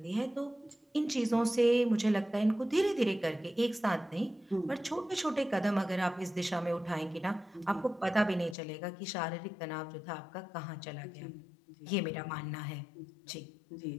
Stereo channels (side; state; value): right; drops out; at 8.6 s